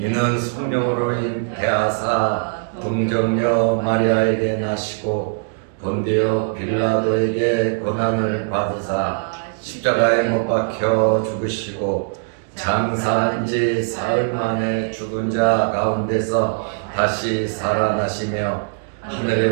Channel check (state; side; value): silent; left; digital silence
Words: 성령으로 잉태하사 동정녀 마리아에게 나시고 본디오 빌라도에게 고난을 받으사 십자가에 못 박혀 죽으시고 장사한 지 사흘 만에 죽은 자 가운데서 다시 살아나시며